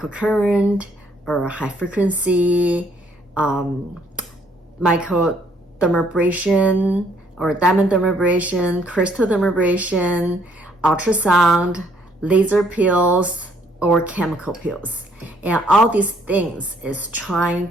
or high frequency microdermabrasion or diamond dermabrasion, crystal dermabrasion, ultrasound, laser pills, or chemical pills. And all these things is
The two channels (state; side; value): normal; both; correlation 0.66